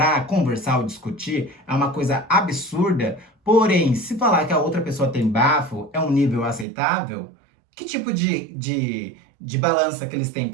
conversar ou discutir, é uma coisa absurda. Porém, se falar que a outra pessoa tem bafo, é um nível aceitável, que tipo de balança que eles têm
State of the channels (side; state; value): left; drops out; at 6.7 s